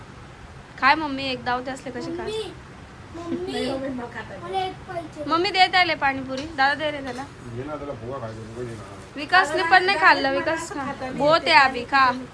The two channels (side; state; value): both; identical; correlation 1.00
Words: काय मम्मी एक दावते असले कसे काय? मम्मी मला एक पाहिजे मम्मी दे त्याला पाणीपुरी. दादा दे रे त्याला. घे ना त्याला फुगा खायचं फुगा दे ना. विकासने पण नाही खाल्लं. विकास बहुत आहे अभि खा.